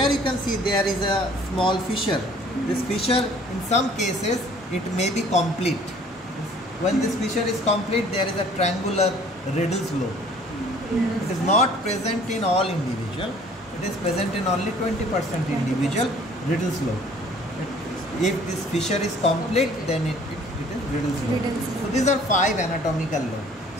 you can see there is a small fissure. This fissure in some cases it may be complete. When this fissure is complete there is a triangular Riddle's lobe. It is not present in all individual. It is present in only 20% individual Riddle's lobe. If this fissure is complete then it is Riddle's lobe. So these are 5 anatomical lobes.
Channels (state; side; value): normal; both; correlation 0.54